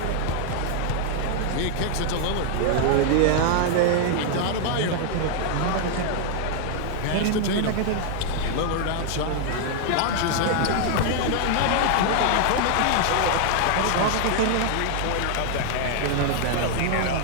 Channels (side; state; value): both; different; correlation 0.00